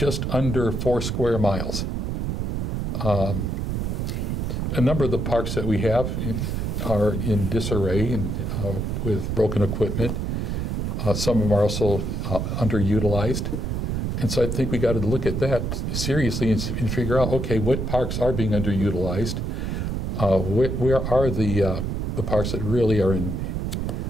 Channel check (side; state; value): right; noise; rumble, 1 dB below the sound